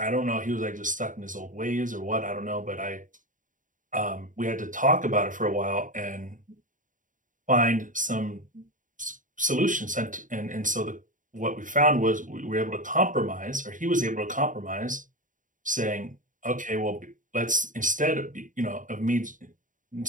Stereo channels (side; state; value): left; late; 0.38 ms